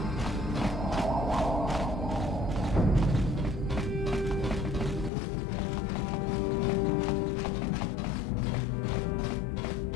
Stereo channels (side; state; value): right; drops out; at 5.1 s